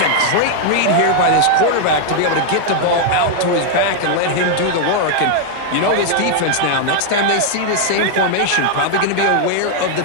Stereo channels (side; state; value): both; different; correlation 0.00